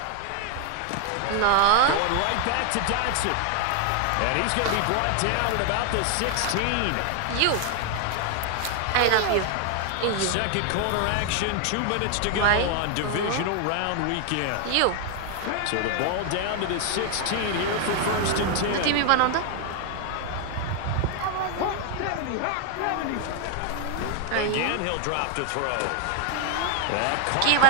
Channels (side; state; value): both; different; correlation 0.00